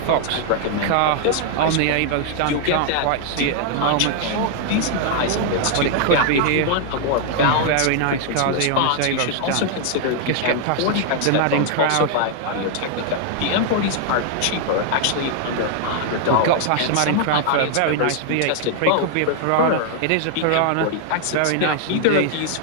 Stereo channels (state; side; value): different; both; correlation 0.00